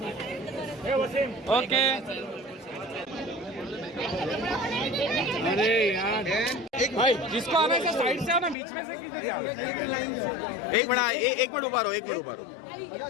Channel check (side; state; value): right; drops out; at 8.6 s